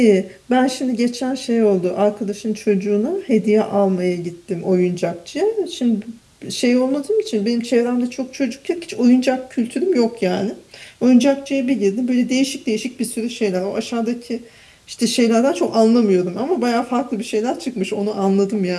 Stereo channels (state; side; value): identical; both; correlation 1.00